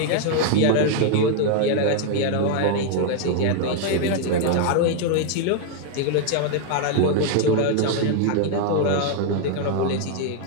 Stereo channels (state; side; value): different; both; correlation 0.00